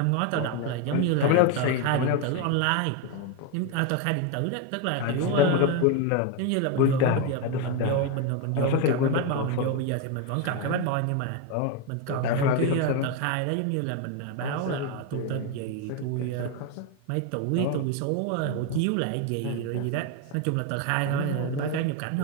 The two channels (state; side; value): different; both; correlation 0.02